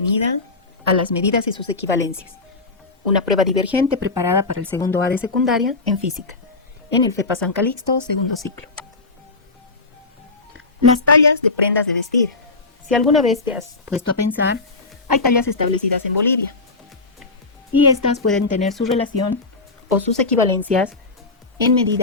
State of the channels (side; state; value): right; quieter; 3.6 dB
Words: a las medidas y sus equivalencias, una prueba divergente preparada para el segundo A de secundaria en física, en el FEPA San Calixto, segundo ciclo. Las tallas de prendas de vestir. Si alguna vez te has puesto a pensar, hay tallas establecidas en Bolivia, y estas pueden tener su relación o sus equivalencias en